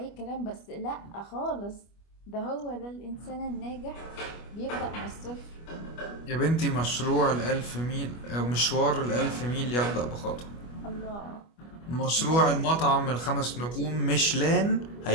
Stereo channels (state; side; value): late; right; 25 ms